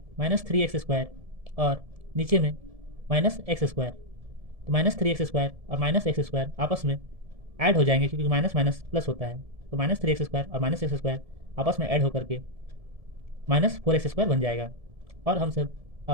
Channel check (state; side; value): late; left; 1.7 ms